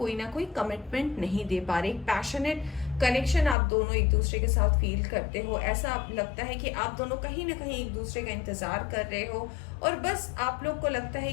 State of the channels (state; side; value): drops out; right; at 3.6 s